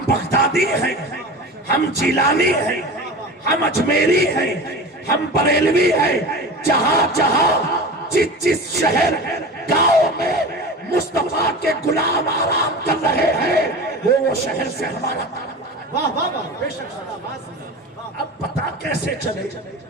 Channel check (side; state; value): both; normal; correlation 0.32